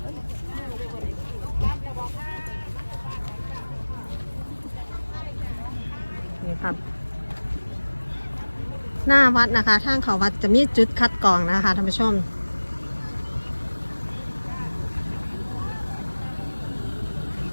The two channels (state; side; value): inverted; both; correlation -1.00